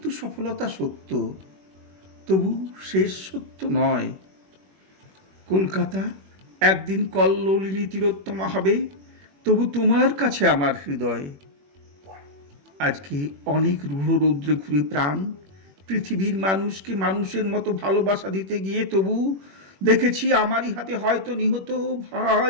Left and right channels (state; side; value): late; left; 21 ms